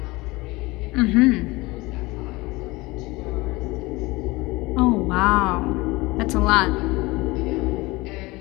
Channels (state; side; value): quieter; right; 22.2 dB